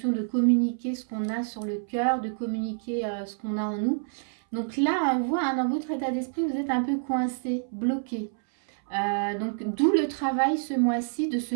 de communiquer ce qu'on a sur le cœur, de communiquer ce qu'on a en nous. Donc là, on voit hein, dans votre état d'esprit, vous êtes un peu coincé, bloqué. Donc d'où le travail ce mois-ci de se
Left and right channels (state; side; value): silent; left; 60 dB below the other